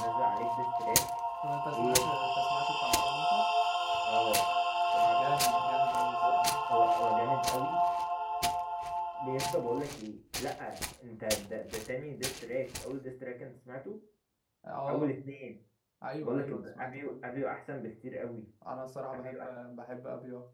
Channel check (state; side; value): identical; both; correlation 1.00